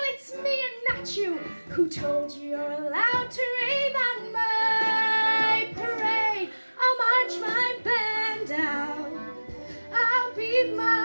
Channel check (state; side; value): inverted; both; correlation -1.00